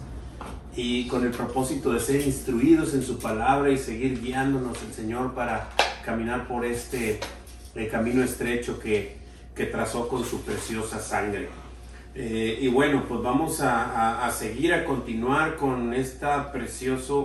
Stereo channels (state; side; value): identical; both; correlation 1.00